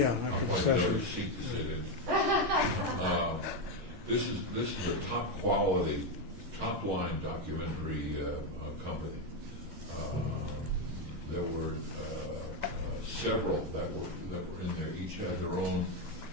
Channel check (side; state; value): left; late; 10 ms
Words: going to never seat to sit in. This is a top quality, top line documentary company. There were several that were in there. Each had their own